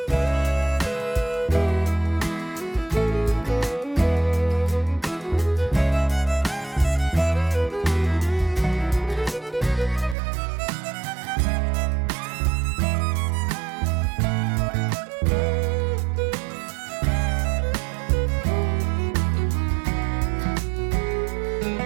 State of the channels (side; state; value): left; drops out; at 10.2 s